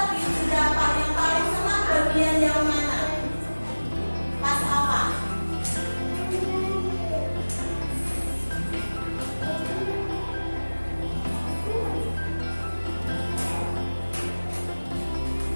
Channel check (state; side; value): inverted; both; correlation -1.00